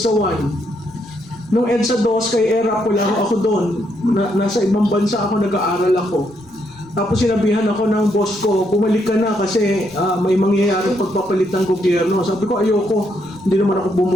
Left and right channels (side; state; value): left; noise; rumble, 30 dB below the sound